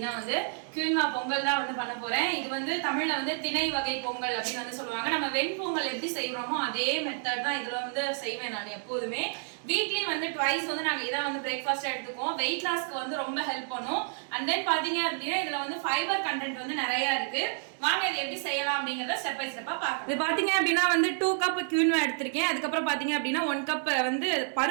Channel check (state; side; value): silent; left; 58 dB below the other